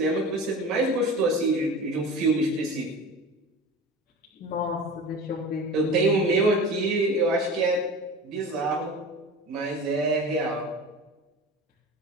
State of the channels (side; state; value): both; normal; correlation 0.34